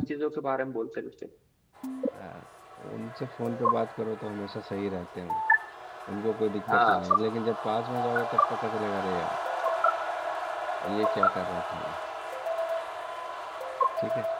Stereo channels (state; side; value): identical; both; correlation 1.00